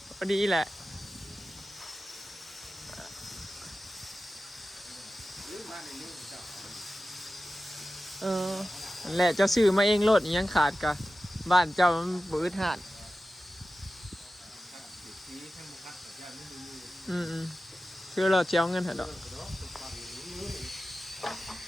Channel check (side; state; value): both; normal; correlation 0.94